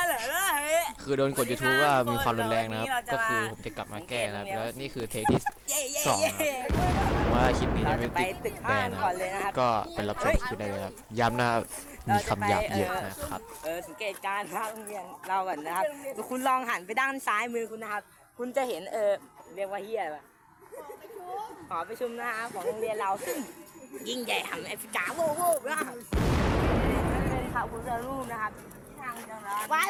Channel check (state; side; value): identical; both; correlation 1.00